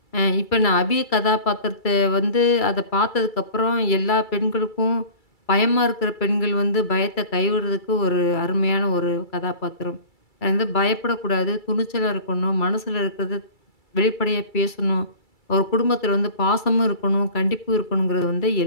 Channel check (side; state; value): right; late; 2.3 ms